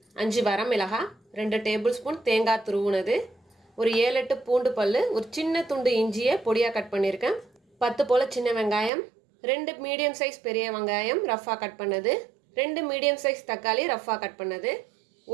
5 வரமிளகாய், 2 டேபிள் ஸ்பூன் தேங்காய் துருவுனது, ஒரு 7-8 பூண்டு பல்லு, ஒரு சின்ன துண்டு இஞ்சியை பொடியாக கட் பண்ணியிருக்கேன், 10 போல சின்ன வெங்காயம், 2 மீடியம் சைஸ் பெரிய வெங்காயம் ரஃபாக கட் பண்ணது, 2 மீடியம் சைஸ் தக்காளி ரஃபாக கட் பண்ணது,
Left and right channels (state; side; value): drops out; left; at 8.9 s